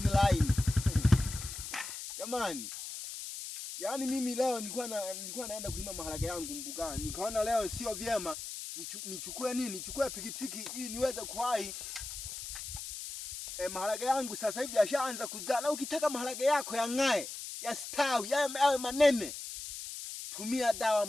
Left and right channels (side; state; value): left; noise; hiss, 8 dB below the sound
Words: line. Jamani. Yaani mimi leo nilikuwa naenda kulima maharage yangu mbugani. Nikaona leo sio vyema nichukue nini? Nichukue pikipiki ili niweze kuwahi. Maharage yangu sasa hivi yashaanza kuzaa. Na ukitaka maharage yako yang'ae, yastawi, yawe manene, tumia dawa